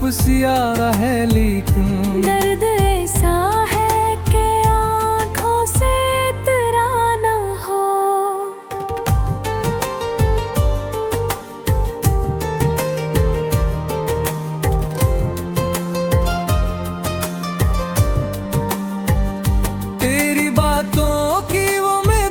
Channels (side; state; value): both; identical; correlation 1.00